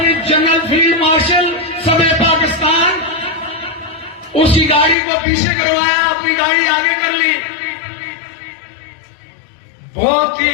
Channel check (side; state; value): right; drops out; at 5.0 s